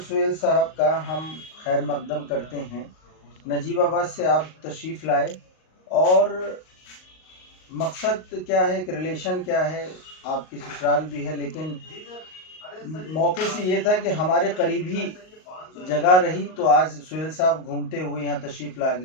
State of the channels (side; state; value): right; late; 38 ms